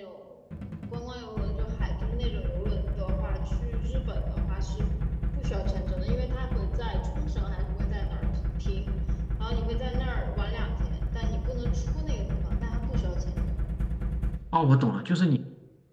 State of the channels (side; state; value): both; identical; correlation 1.00